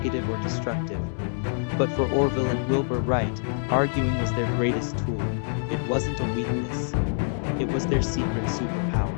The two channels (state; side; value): silent; right; 60 dB below the other